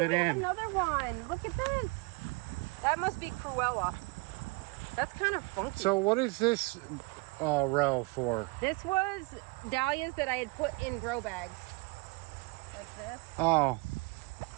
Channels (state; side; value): quieter; left; 28.1 dB